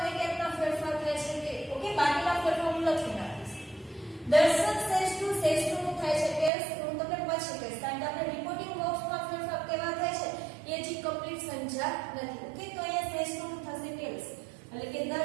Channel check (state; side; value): drops out; left; at 6.5 s